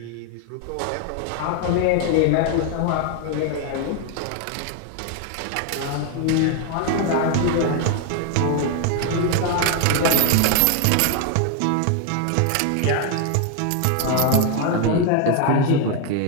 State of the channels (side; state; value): both; different; correlation 0.00